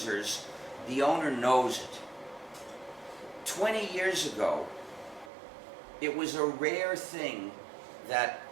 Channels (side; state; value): left; drops out; at 5.3 s